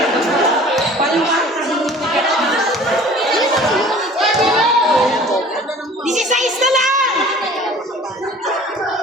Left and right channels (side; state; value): both; normal; correlation 0.47